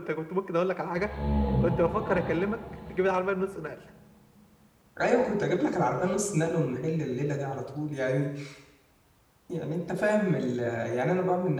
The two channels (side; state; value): both; identical; correlation 1.00